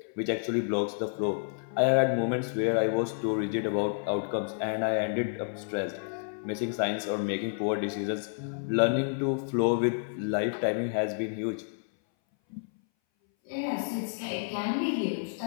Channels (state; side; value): silent; right; 58 dB below the other